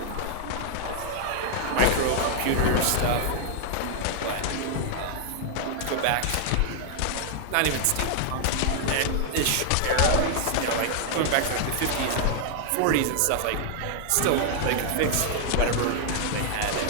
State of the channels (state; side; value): different; both; correlation -0.01